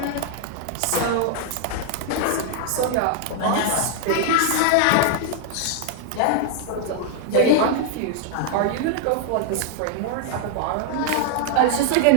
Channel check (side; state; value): both; different; correlation 0.00